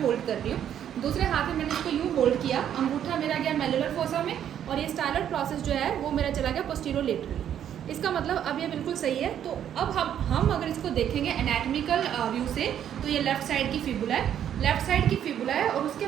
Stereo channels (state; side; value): quieter; left; 9.9 dB